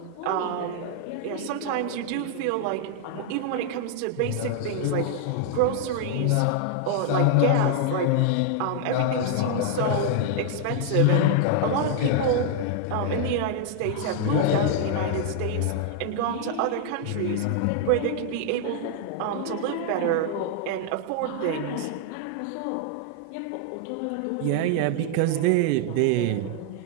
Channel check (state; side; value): different; both; correlation 0.00